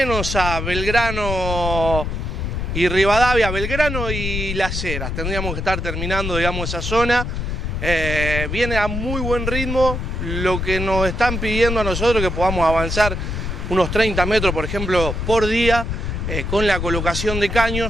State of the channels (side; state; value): left; noise; rumble, 3 dB below the sound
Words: a Belgrano y Rivadavia, Belgrano y Las Heras. Tendríamos que estar terminando, digamos, esa zona. Viene a muy buen ritmo. Lo que nos están pidiendo a nosotros que podamos avanzar unos 30 metros, por ejemplo, por día, con la colocación de